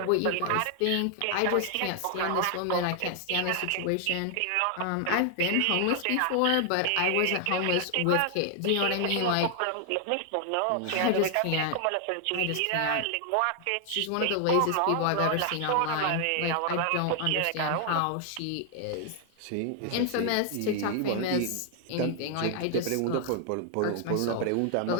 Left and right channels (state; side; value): different; both; correlation 0.00